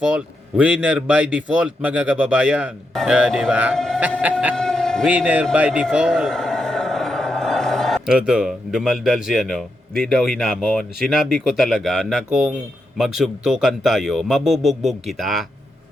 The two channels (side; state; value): both; normal; correlation 0.84